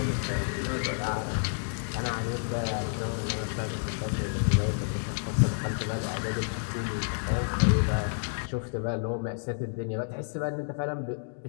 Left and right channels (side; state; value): right; silent; digital silence